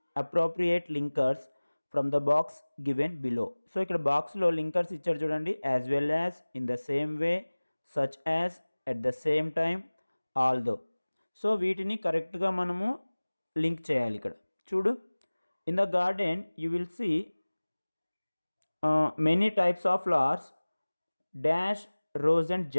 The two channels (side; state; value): both; inverted; correlation -1.00